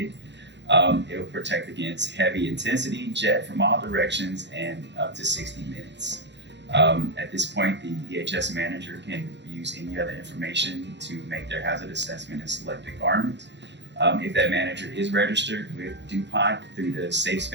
It will protect against heavy intensity, jet from all directions, and up to 60 minutes. At this point, the EHS manager can use any other information to make their hazard assessment and select a garment. If that manager is registered with DuPont through the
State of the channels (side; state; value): left; late; 0.52 ms